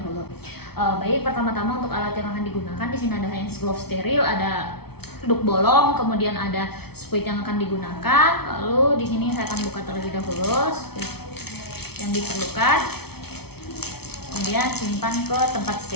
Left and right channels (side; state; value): right; late; 0.96 ms